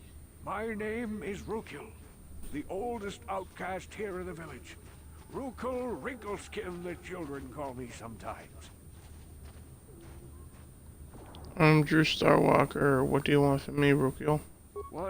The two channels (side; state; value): both; identical; correlation 1.00